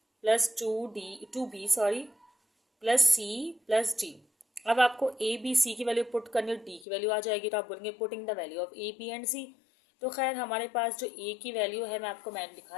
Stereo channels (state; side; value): drops out; right; at 6.9 s